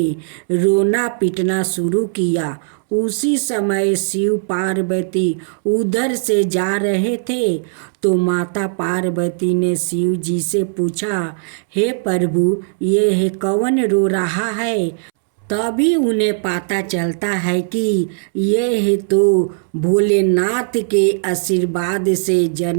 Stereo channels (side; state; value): left; silent; 67 dB below the other